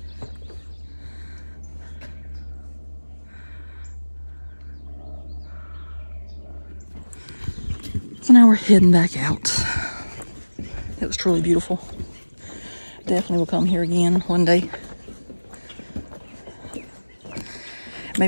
So now we're heading back out. It was truly beautiful. Definitely will come here again one day.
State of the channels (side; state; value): both; inverted; correlation -1.00